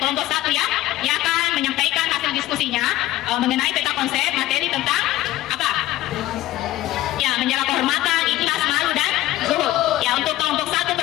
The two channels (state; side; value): quieter; right; 15.6 dB